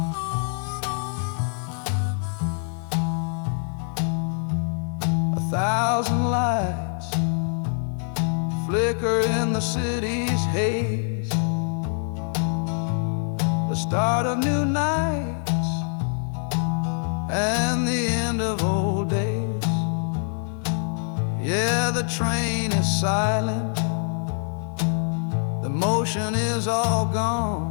1,000 lights flicker in the city's haze, the start of new nights and the end of old days. Yeah, the train is silent, the motion is all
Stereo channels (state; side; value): silent; right; 62 dB below the other